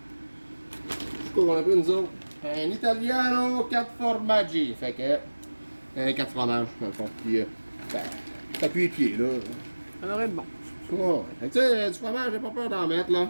C'est quoi qu'on a pris nous autres? Un Italiano 4 formaggi. Fait que. 4 fromages, dans le fond. Puis, t'appuies les pieds, là. Ça aurait être bon. Ouais. Fait que, tu sais, du fromage, j'ai pas peur d'en mettre, là.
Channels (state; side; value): inverted; both; correlation -1.00